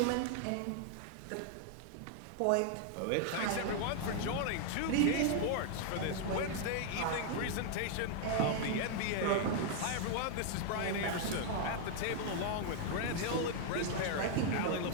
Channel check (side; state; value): both; different; correlation 0.00